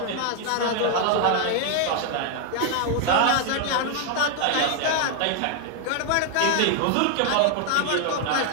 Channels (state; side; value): different; both; correlation 0.00